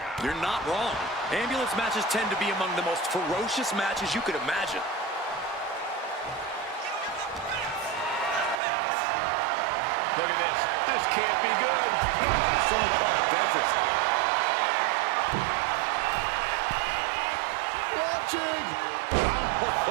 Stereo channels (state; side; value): drops out; left; at 8.6 s